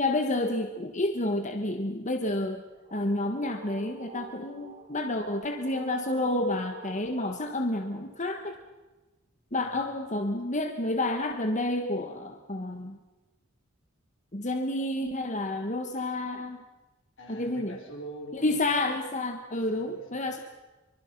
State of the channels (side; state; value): both; normal; correlation 0.29